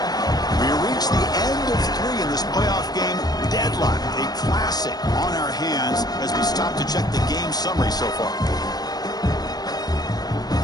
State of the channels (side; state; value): right; late; 0.19 ms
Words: We reach the end of 3 in this playoff game. Deadlock, a classic on our hands as we stop to check the game summary so far.